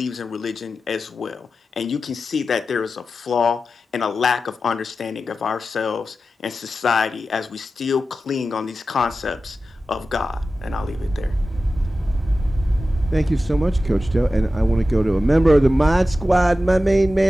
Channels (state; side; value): normal; both; correlation 0.93